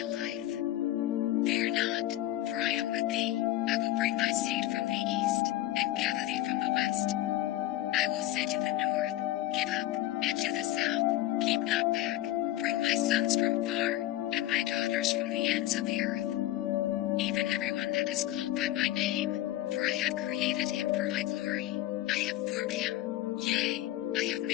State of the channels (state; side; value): quieter; right; 14.9 dB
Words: life. Fear not, for I am with thee. I will bring thy seed from the east, and gather thee from the west. I will say to the north, Give up, and to the south, Keep not back. Bring my sons from far, and my daughters from the ends of the earth. Even everyone that is called by my name, for I have created him for my glory. I have formed him, yea, I have